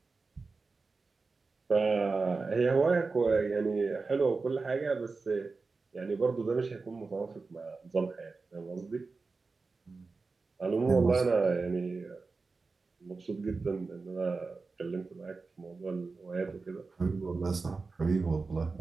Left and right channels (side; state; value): left; quieter; 4.1 dB